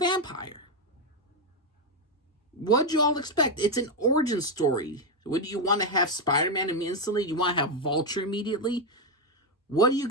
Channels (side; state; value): both; normal; correlation 0.05